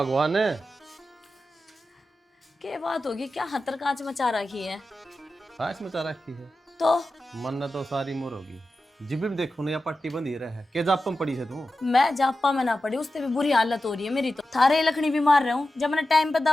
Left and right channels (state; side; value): normal; both; correlation 0.92